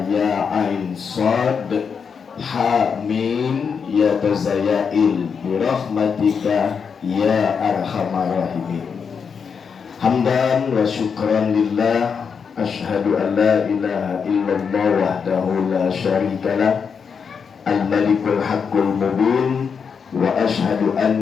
ya ain sad ha mim ya tazayail bi rahmatika ya arhamar rahimin. Hamdan wa syukran lillah, asyhadu an la ilaha illallah wahdahu la syarikalah, al-malikul haqqul mubin, wa asyhadu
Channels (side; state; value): right; quieter; 6.2 dB